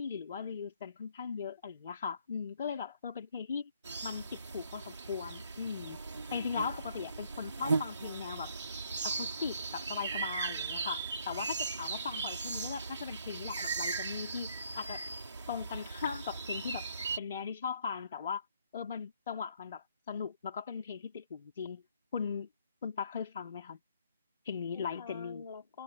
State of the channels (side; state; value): both; inverted; correlation -0.67